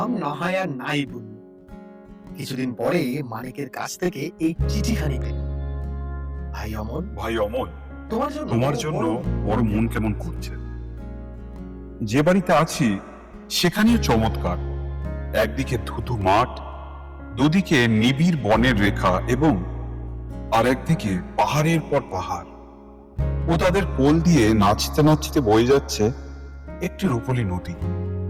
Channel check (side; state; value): both; identical; correlation 1.00